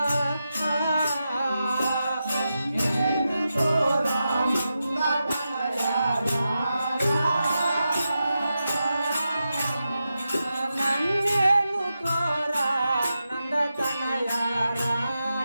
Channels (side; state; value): both; inverted; correlation -0.89